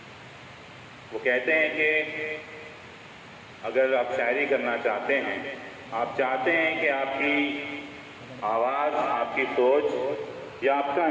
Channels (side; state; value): both; identical; correlation 1.00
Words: वो कहते हैं कि अगर आप शायरी करना चाहते हैं, आप चाहते हैं कि आपकी आवाज़, आपकी सोच या आपका